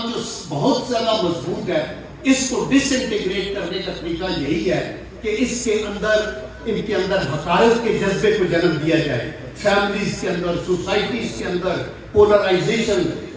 جو بہت زیادہ مضبوط ہے، اس کو ڈس انٹیگریٹ کرنے کا طریقہ یہی ہے کہ اس کے اندر، ان کے اندر حقارت کے جذبے کو جنم دیا جائے، فیملیز کے اندر، سوسائٹیز کے اندر پولرائزیشن،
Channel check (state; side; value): identical; both; correlation 1.00